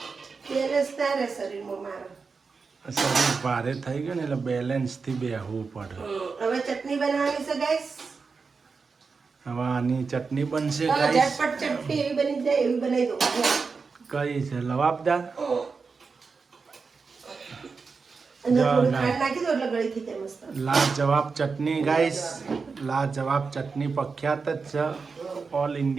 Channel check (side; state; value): left; quieter; 4.8 dB